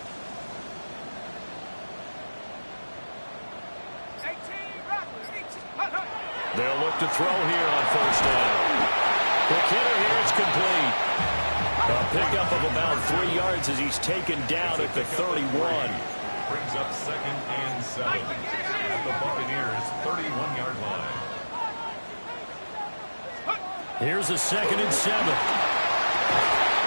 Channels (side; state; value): both; inverted; correlation -1.00